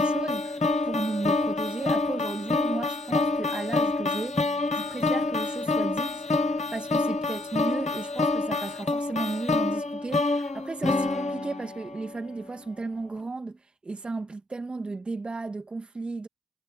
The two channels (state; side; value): normal; both; correlation 0.69